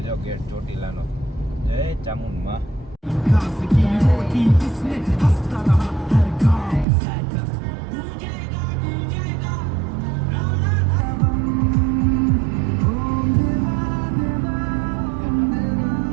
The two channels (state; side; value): drops out; left; at 6.9 s